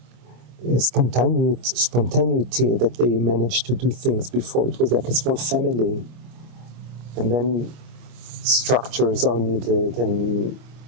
spontaneity that they managed to do things before. It was like a small family. And then structures are needed, and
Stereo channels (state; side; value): late; left; 25 ms